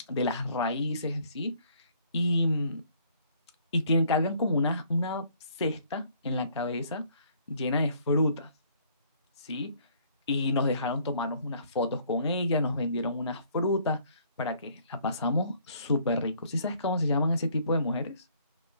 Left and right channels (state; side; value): inverted; both; correlation -0.61